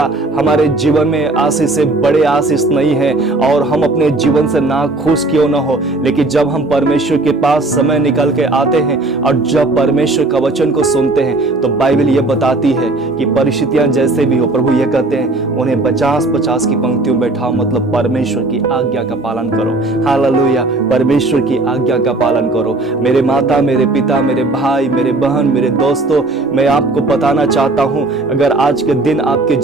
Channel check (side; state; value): left; quieter; 3.0 dB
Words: हमारे जीवन में आशीष से बड़े आशीष नहीं है, और हम अपने जीवन से ना खुश क्यों ना हो, लेकिन जब हम परमेश्वर के पास समय निकाल के आते हैं और जब परमेश्वर का वचन को सुनते हैं, तो बाइबल ये बताती है कि परिस्थितियां जैसे भी हो, प्रभु ये कहते हैं उन्हें 50-50 की पंक्तियों बैठाओ, मतलब परमेश्वर की आज्ञा का पालन करो। हालेलुया। परमेश्वर की आज्ञा आज्ञा का पालन करो। मेरे माता, मेरे पिता, मेरे भाई, मेरे बहन, मेरे दोस्तों, मैं आपको बताना चाहता हूं, अगर आज के दिन आपके